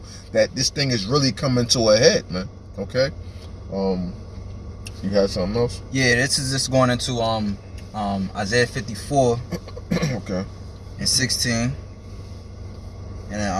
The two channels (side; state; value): both; identical; correlation 1.00